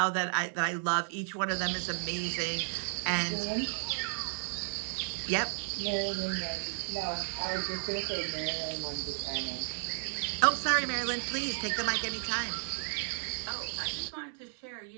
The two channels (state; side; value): silent; left; 56 dB below the other